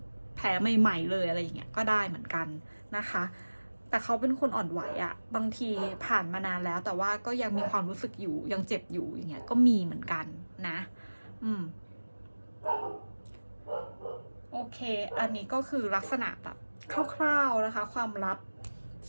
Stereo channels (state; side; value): inverted; both; correlation -1.00